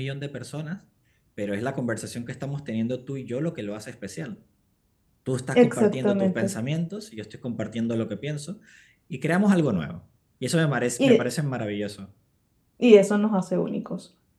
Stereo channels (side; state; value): both; identical; correlation 1.00